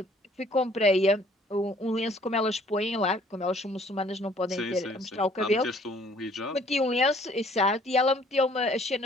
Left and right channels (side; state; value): both; normal; correlation 0.58